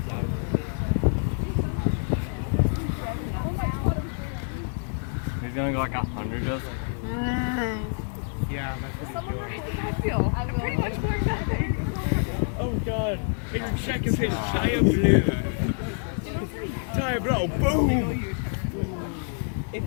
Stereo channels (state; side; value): silent; right; 57 dB below the other